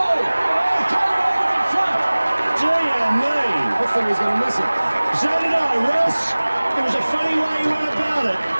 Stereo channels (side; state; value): both; inverted; correlation -1.00